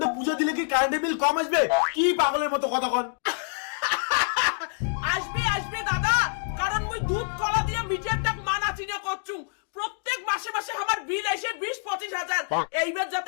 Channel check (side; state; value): right; silent; digital silence